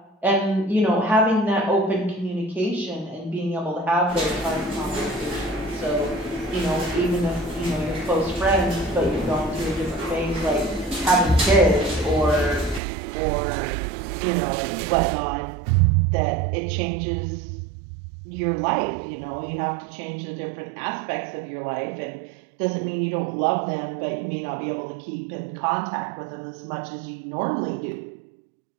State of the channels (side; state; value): left; drops out; at 12.8 s